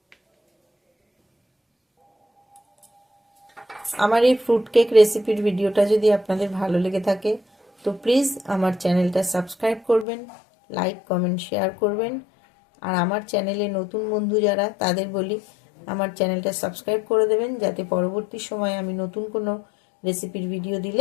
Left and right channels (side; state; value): right; drops out; at 10.1 s